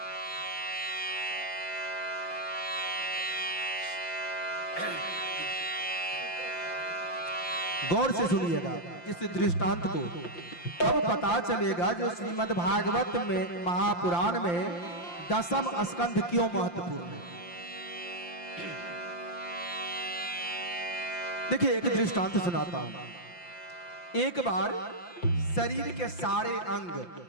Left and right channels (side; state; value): right; late; 5.8 ms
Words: गौर से सुनिएगा इस दृष्टांत को, तब पता चलेगा जो श्रीमद् भागवत में महापुराण में दसम स्कंध क्यों महत्वपूर्ण है। देखिए, एक दृष्टांत सुनाता हूं। एक बार शरीर के सारे अंग,